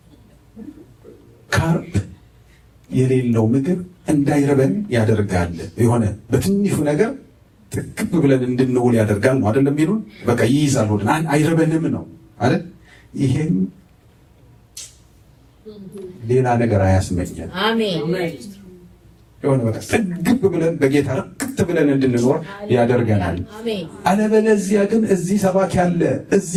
ካርብ የሌለው ምግብ እንዳይረበን ያደርጋል። የሆነ በትንሹ ነገር ጥቅብ ብለን እንድንውል ያደርጋል ነው አይደለም የሚሉን። በቃ ይይዛል፣ ወደን አይረበንም ነው አይደል? ይሄም ሌላ ነገር አያስመኘን። አሜን። የሆነ በቃ ጥግብ ብለን በጌታ ርክት ብለን እንድንኖር ያደርገናል። አለበለዚያ ግን እዚህ ሰባኪ አለ፣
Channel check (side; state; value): both; identical; correlation 1.00